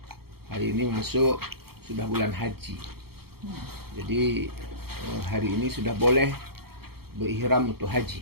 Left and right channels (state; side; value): late; left; 0.95 ms